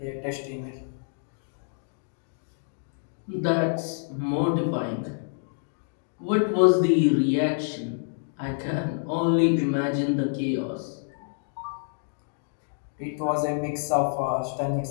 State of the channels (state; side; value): silent; right; digital silence